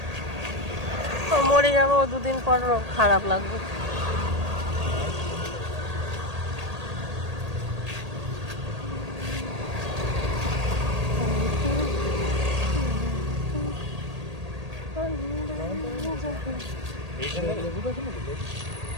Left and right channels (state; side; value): late; left; 1.8 ms